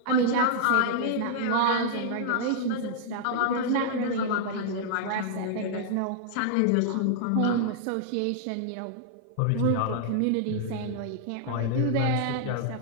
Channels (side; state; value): both; different; correlation -0.01